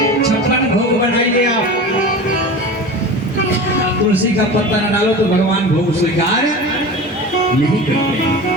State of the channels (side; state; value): both; normal; correlation 0.32